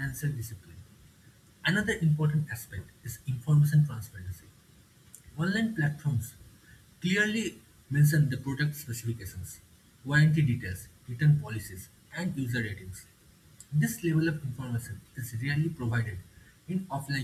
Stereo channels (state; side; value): identical; both; correlation 1.00